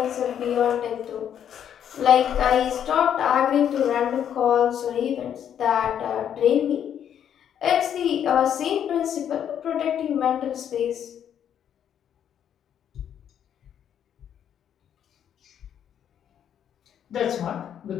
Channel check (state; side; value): quieter; right; 9.3 dB